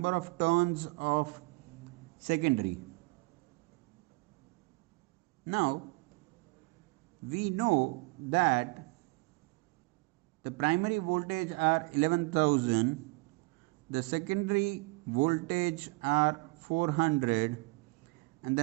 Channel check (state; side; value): quieter; left; 27.2 dB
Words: of turns of secondary. Now we know that the primary voltage are 11,000, the secondary voltage are 400, and the